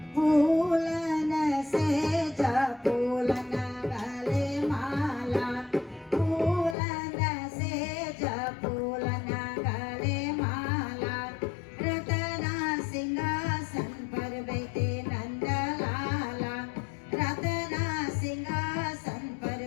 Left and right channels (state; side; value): drops out; right; at 6.8 s